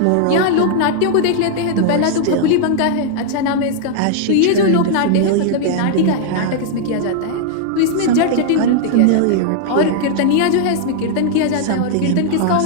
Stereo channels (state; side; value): different; both; correlation -0.01